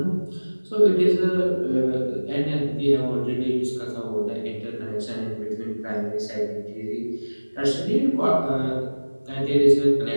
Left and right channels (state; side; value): inverted; both; correlation -1.00